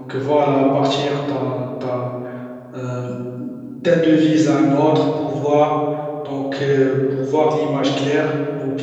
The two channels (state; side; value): identical; both; correlation 1.00